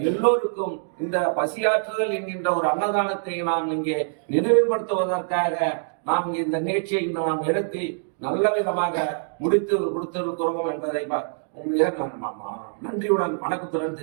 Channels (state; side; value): silent; left; digital silence